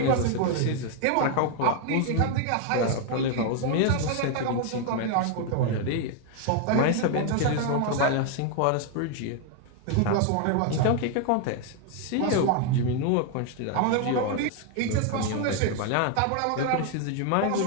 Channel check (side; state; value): both; different; correlation 0.00